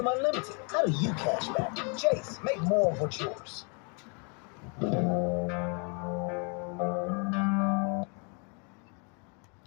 Unlimited. How do you cash back? Chase, make more of what's yours.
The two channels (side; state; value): right; quieter; 36.7 dB